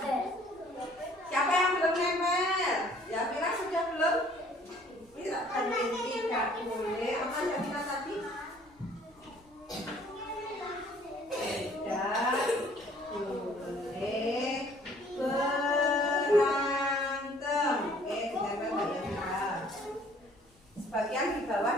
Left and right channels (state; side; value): normal; both; correlation 0.57